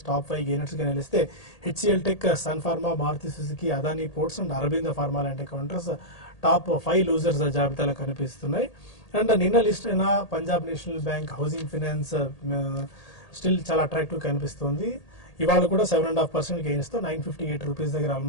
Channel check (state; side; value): late; right; 1.8 ms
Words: టాప్ 5 గెయినర్స్గా నిలిస్తే HCL Tech, Sun Pharma, Maruti Suzuki, Adani Ports and Aurobindo Pharma లాంటి కౌంటర్స్ టాప్ 5 లూజర్స్ జాబితాలో కనిపిస్తున్నాయి. అండ్ నిన్న లిస్ట్ అయిన Punjab National Bank, Housing Finance still చాలా అట్రాక్టివ్ కనిపిస్తుంది. ఇవాళ కూడా 7.5% గెయిన్స్తో 958 రూపీస్ దగ్గర